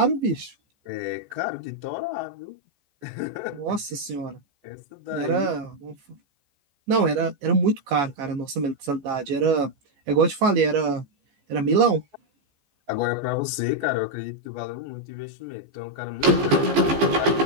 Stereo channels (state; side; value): late; left; 14 ms